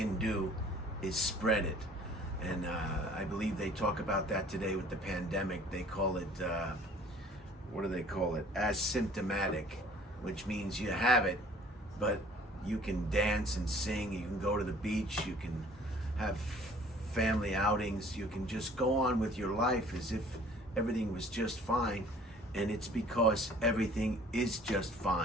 do is spread it. And I believe they talk about that today with the pandemic. They call it, what do they call it? Asymptomatic, which means you have it, but you can dance and sing, you can go to the beach, you can have family outings, you can just go on with your life as if everything was just fine. And it's because everything is just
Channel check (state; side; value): normal; both; correlation 0.52